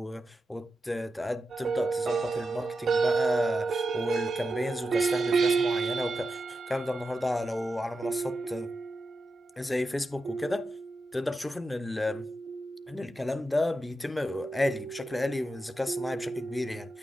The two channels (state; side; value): normal; both; correlation 0.89